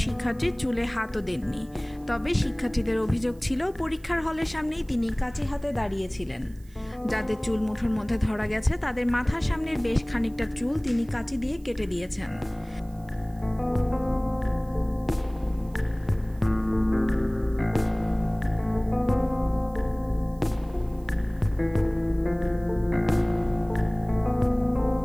শিক্ষার্থীর চুলে হাতও দেননি। তবে শিক্ষার্থীদের অভিযোগ ছিল পরীক্ষার হলের সামনেই তিনি কাঁচি হাতে দাঁড়িয়েছিলেন। যাদের চুল মুঠোর মধ্যে ধরা গেছে তাদের মাথার সামনের বেশ খানিকটা চুল তিনি কাঁচি দিয়ে কেটে দিয়েছেন।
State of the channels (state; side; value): noise; right; hiss, 29 dB below the sound